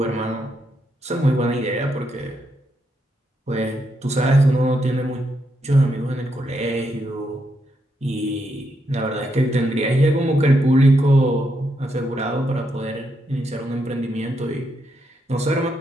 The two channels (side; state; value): both; normal; correlation 0.80